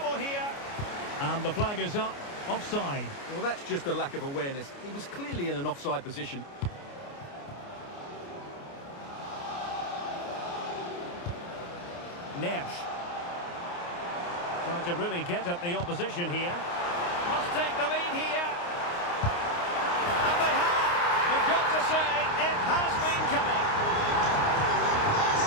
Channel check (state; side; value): late; right; 29 ms